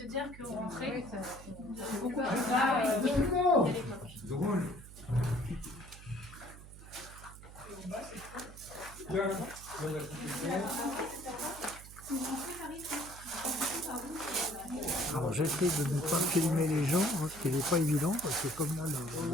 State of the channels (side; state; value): right; noise; hum, 16 dB below the sound